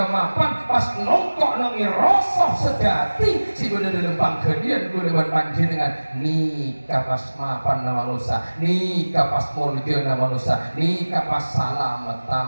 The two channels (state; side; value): inverted; both; correlation -1.00